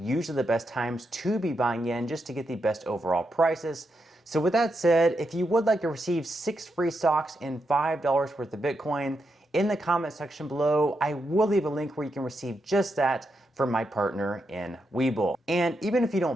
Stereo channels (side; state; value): both; normal; correlation 0.84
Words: the best times to be buying in just to get the best overall prices. So with that said, if you would like to receive 6 free stocks and $5 worth of Bitcoin, in the comment section below, I will leave a link where you can receive just that from my partner in Webull. And even if you